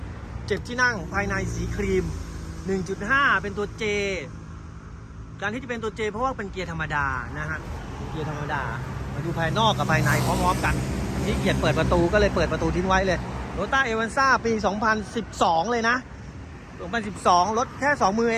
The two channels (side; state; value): both; identical; correlation 1.00